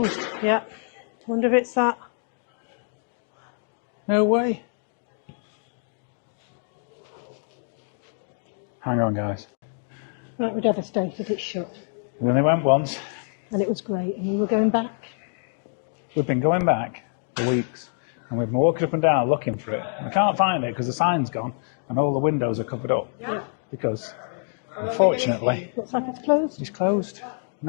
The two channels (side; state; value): right; silent; 58 dB below the other